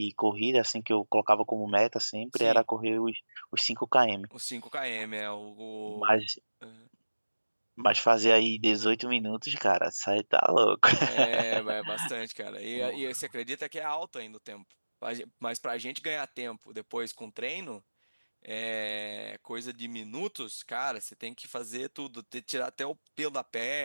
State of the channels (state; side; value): inverted; both; correlation -1.00